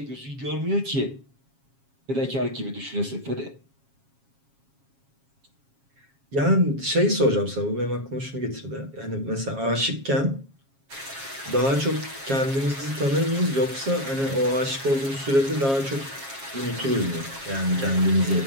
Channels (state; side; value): late; left; 7.3 ms